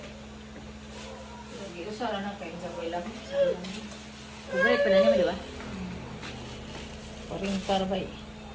Lagi, usara na kayo sa lang. Favorite pa na niya, di ba? Paring parbay.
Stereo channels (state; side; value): identical; both; correlation 1.00